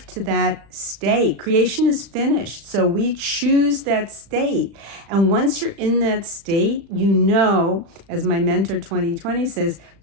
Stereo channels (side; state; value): left; late; 35 ms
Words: to that state. Creation is finished, so we choose that state. And once you're in that state, as my mentor 2020 says,